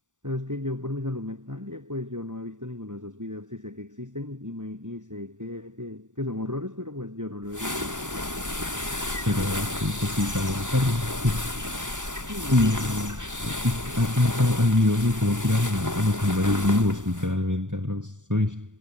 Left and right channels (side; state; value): left; late; 0.86 ms